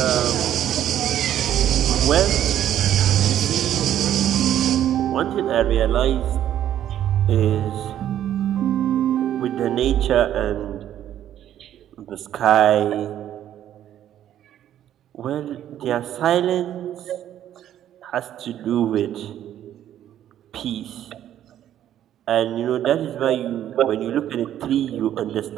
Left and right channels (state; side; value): quieter; left; 11.2 dB